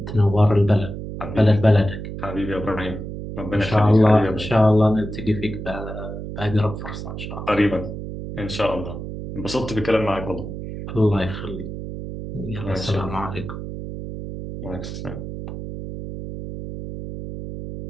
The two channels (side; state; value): right; noise; hum, 8 dB below the sound